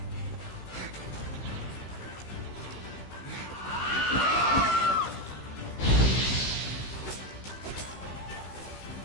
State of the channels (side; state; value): right; late; 16 ms